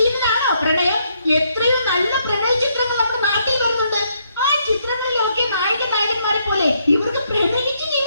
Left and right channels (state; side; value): inverted; both; correlation -0.74